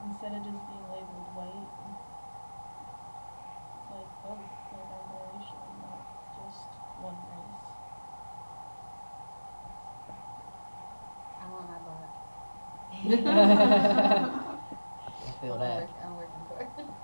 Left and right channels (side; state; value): both; inverted; correlation -1.00